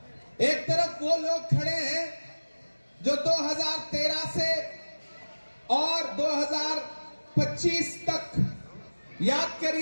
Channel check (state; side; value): inverted; both; correlation -1.00